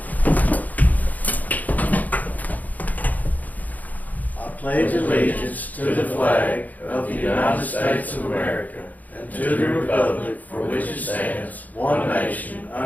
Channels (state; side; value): late; right; 0.079 ms